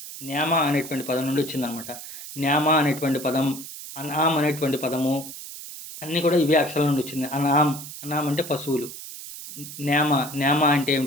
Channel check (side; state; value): right; noise; hiss, 12 dB below the sound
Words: న్యామ అనేటువంటి పదం నుండి వచ్చిందనమాట. న్యామ అనేటువంటి పదం, అన్ఆమ్ అనేటువంటి పదము అన్నీ కూడా ఇవే అక్షరాల నుండి వచ్చింది. అనామ్ అంటే పశువులు. న్యామ అంటే